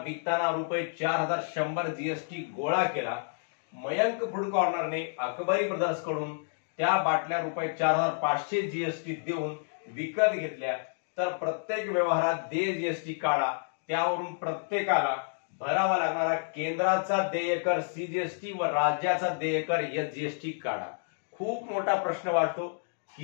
विकताना ₹4,100 जीएसटी गोळा केला. मयंक फूड कॉर्नरने अकबरी ब्रदर्स कडून त्या बाटल्या ₹4,500 जीएसटी देऊन विकत घेतल्या तर प्रत्येक व्यवहारात देय जीएसटी काढा. त्यावरून प्रत्येकाला भरावा लागणारा केंद्राचा देयकर सीजीएसटी व राज्याचा देयकर एसजीएसटी काढा. खूप मोठा प्रश्न वाटतो,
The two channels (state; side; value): silent; right; digital silence